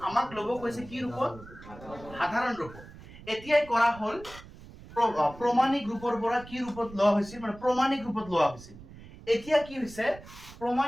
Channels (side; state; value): right; noise; rumble, 18 dB below the sound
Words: আমাক লব কৈছে কি ৰূপত সাধাৰণ ৰূপত এতিয়াই কৰা হল প্ৰমাণিক ৰূপৰ পৰা কি ৰূপত লোৱা হৈছিল মানে প্ৰমাণিক ৰূপত লোৱা হৈছিল এতিয়া কি হৈছে